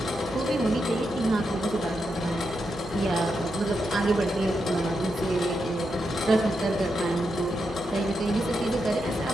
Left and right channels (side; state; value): both; normal; correlation 0.85